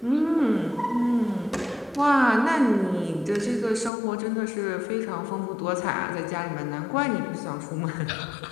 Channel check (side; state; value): right; drops out; at 3.9 s